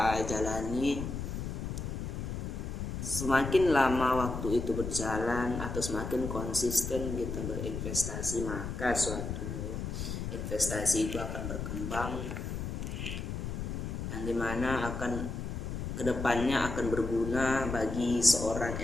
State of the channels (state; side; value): noise; left; rumble, 4 dB below the sound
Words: jalani. Semakin lama waktu itu berjalan atau semakin konsisten kita berinvestasi, maka suatu investasi itu akan berkembang, yang dimana akan kedepannya akan berguna bagi seorang